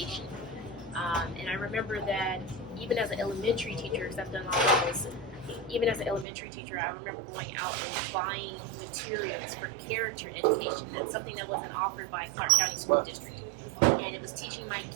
And I remember that even as an elementary teacher, because I've done all of this, even as an elementary teacher, I remember going out and buying materials for character education. That's something that wasn't offered by Clark County School District. And it was teaching my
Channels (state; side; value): drops out; left; at 6.2 s